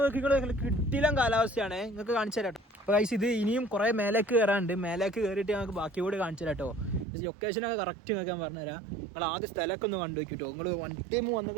നോക്കിക്കൊണ്ട് കിട്ടില്ല കാലാവസ്ഥയാണ്, നിങ്ങൾക്ക് കാണിച്ചു തരാം കേട്ടോ. അപ്പോൾ ഗൈസ് ഇത് ഇനിയും കുറേ മേലേക്ക് കയറാനുണ്ട്. മേലേക്ക് കയറിയിട്ട് ഞങ്ങൾക്ക് ബാക്കി കൂടി കാണിച്ചു തരാം കേട്ടോ. ലൊക്കേഷനൊക്കെ കറക്റ്റ് നിങ്ങൾക്ക് ഞാൻ പറഞ്ഞുതരാം. നിങ്ങൾ ആദ്യം സ്ഥലമൊക്കെ ഒന്ന് കണ്ടു വയ്ക്കും കേട്ടോ. നിങ്ങൾ വൺ ടൈം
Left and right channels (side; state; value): left; drops out; at 7.1 s